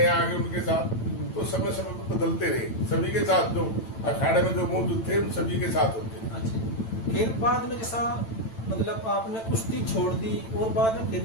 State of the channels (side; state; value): right; late; 9.0 ms